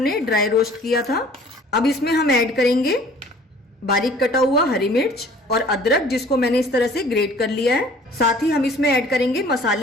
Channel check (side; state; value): both; normal; correlation 0.51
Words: ड्राई रोस्ट किया था। अब इसमें हम ऐड करेंगे बारीक कटा हुआ हरी मिर्च और अदरक, जिसको मैंने इस तरह से ग्रेट कर लिया है। साथ ही हम इसमें ऐड करेंगे